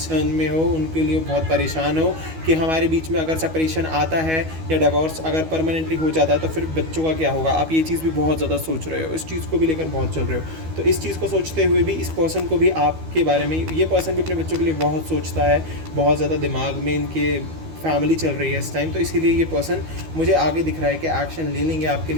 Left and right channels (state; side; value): late; left; 12 ms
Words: में हो, उनके लिए बहुत परेशान हो कि हमारे बीच में अगर सेपरेशन आता है या डिवोर्स अगर परमानेंटली हो जाता है तो फिर बच्चों का क्या होगा। आप ये चीज़ भी बहुत ज़्यादा सोच रहे हो, इस चीज़ को भी लेकर बहुत चल रहे हो। तो इस चीज़ को सोचते हुए भी इस पर्सन को भी आपके बारे में, ये पर्सन भी अपने बच्चों के लिए बहुत सोचता है, बहुत ज़्यादा दिमाग में इनके फैमिली चल रही है इस टाइम, तो इसीलिए ये पर्सन मुझे आगे दिख रहा है कि एक्शन ले लेंगे आपके